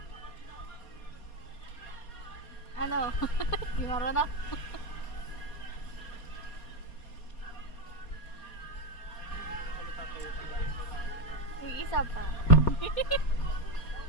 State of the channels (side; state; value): right; late; 4.2 ms